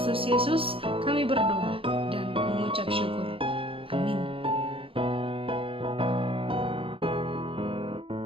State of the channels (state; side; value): late; left; 0.26 ms